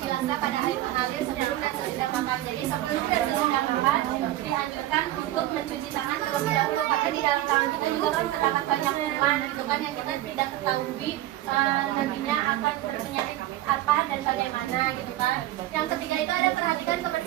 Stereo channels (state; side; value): quieter; left; 14.8 dB